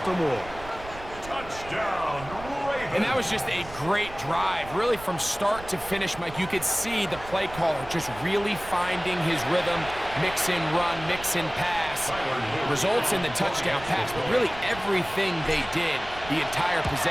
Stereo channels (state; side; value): noise; right; rumble, 15 dB below the sound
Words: Touchdown, Ravens. And that was just a great drive. Really from start to finish, Mike, you could see the play caller just really finding his rhythm. Mix and run, mix and pass. Results in the touchdown pass. But really everything they did, the entire